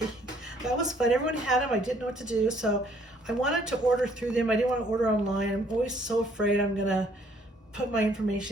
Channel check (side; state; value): both; normal; correlation 0.63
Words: that was fun. Everyone had them. I didn't know what to do, so I wanted to order through them. I didn't want to order online. I'm always so afraid I'm gonna put my